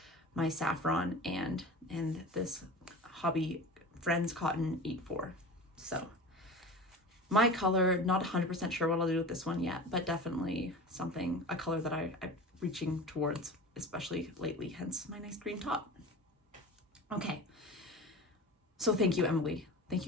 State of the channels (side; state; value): both; normal; correlation 0.33